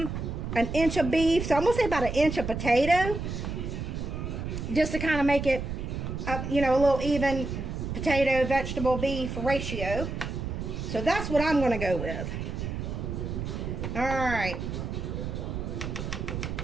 inch of beef, so I'm going to say about an inch of potato, just to kind of make it, you know, a little even potato, vegetable, beef ratio. So that's what I'm going to go with. All right.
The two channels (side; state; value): right; noise; rumble, 4 dB below the sound